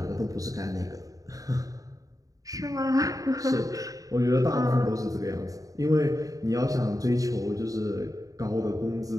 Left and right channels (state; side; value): late; left; 0.17 ms